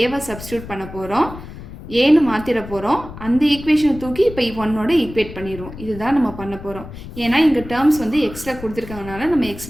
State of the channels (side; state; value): left; noise; rumble, 13 dB below the sound